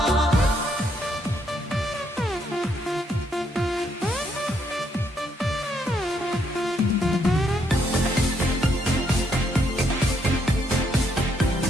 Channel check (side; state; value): both; normal; correlation 0.74